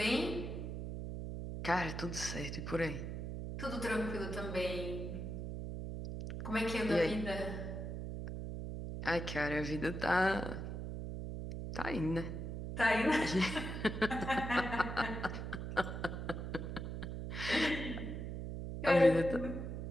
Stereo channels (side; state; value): right; noise; hum, 5 dB below the sound